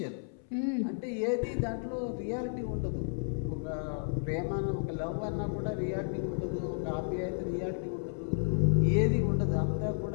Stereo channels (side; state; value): right; silent; 56 dB below the other